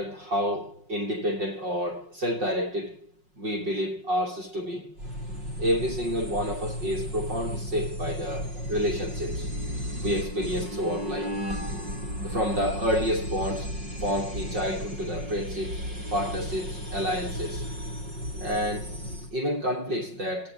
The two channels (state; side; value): late; left; 5.5 ms